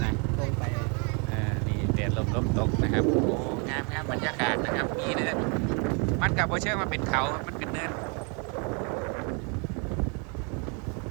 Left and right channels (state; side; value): quieter; left; 35.0 dB